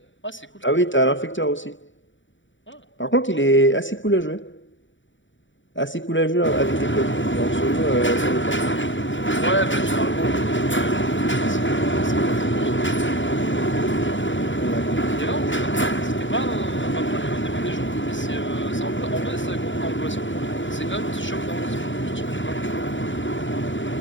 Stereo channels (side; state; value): right; late; 0.55 ms